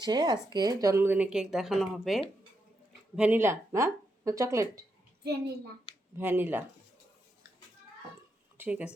আজকে জন্মদিনে কেক দেখানো হবে। ভ্যানিলা না চকলেট? ভ্যানিলা। ভ্যানিলা, ঠিক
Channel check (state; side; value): normal; both; correlation 0.83